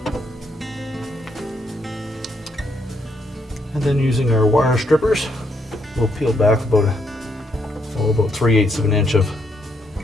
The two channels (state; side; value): normal; both; correlation 0.75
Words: And then using our wire strippers, we'll peel back about 3/8 of an inch of